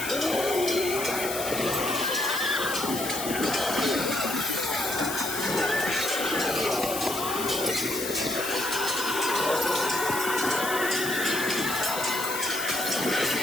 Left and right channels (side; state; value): left; noise; hiss, 6 dB below the sound